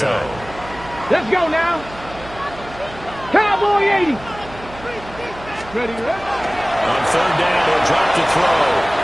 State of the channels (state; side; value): noise; right; hum, 17 dB below the sound